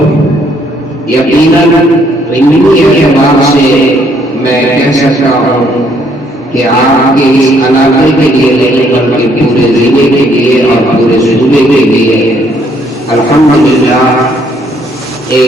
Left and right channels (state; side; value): normal; both; correlation 0.67